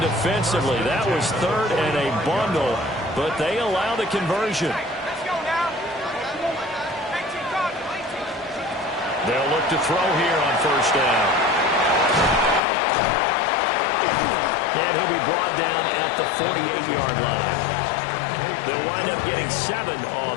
defensively. That was 3rd and a bundle, but they allow the conversion. They'll look to throw here on 1st down. And he'll be brought down at the 48-yard line. They'll wind up getting 7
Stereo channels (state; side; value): drops out; right; at 12.6 s